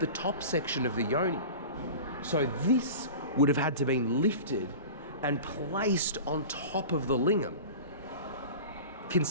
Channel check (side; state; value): both; inverted; correlation -0.35